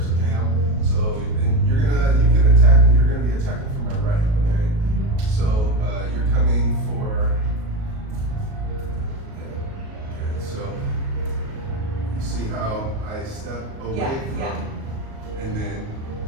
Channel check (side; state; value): left; late; 37 ms